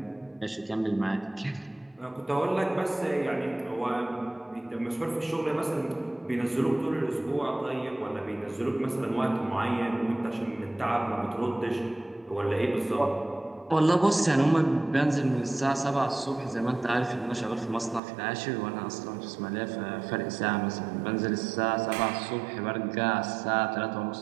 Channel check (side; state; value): left; drops out; at 18.0 s